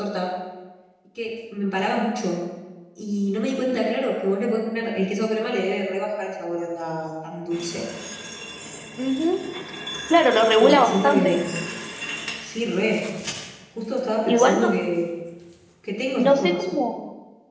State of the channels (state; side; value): identical; both; correlation 1.00